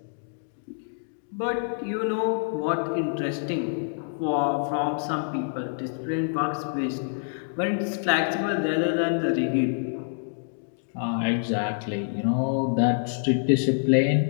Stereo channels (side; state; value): right; silent; digital silence